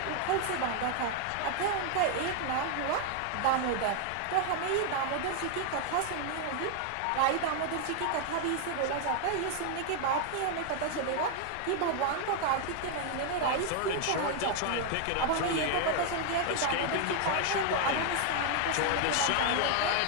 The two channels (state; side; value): different; both; correlation 0.00